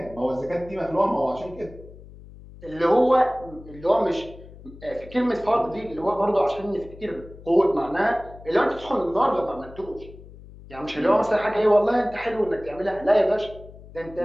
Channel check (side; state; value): left; noise; hum, 18 dB below the sound